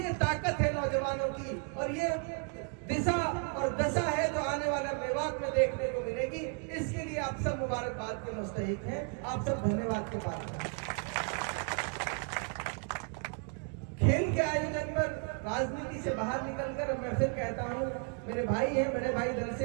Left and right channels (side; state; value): left; quieter; 38.5 dB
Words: ताकत है नौजवानों की और ये दिशा और दशा है जो आने वाला मेवात में देखने को मिलेगी। इसके लिए आप सब मुबारकबाद के मुस्तहिक हैं, आप सब धन्यवाद के पात्र हैं। खेल के आयोजन पर राजनीति से बाहर निकलकर मैं फिर कहता हूँ, मेरे भाई हैं, बड़े भाई दल